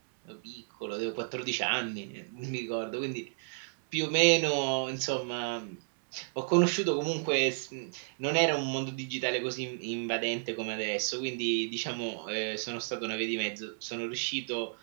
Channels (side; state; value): left; silent; digital silence